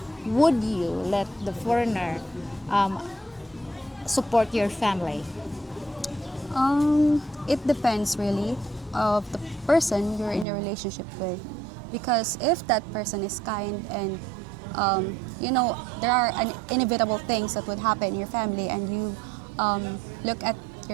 would you let the foreigner support your family? It depends really of the person you're in a relationship with, because if that person is kind and there are inevitable things that would happen in your family, and you look at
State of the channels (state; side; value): drops out; left; at 10.5 s